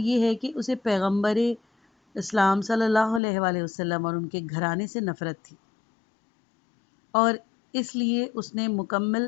ہے کہ اسے پیغمبر اسلام صلی اللہ علیہ وآلہ وسلم اور ان کے گھرانے سے نفرت تھی، اور اس لیے اس نے مکمل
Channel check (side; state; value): right; drops out; at 3.2 s